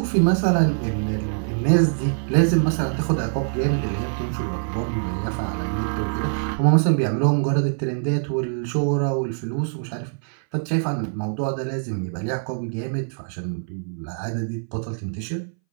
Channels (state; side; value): silent; left; 61 dB below the other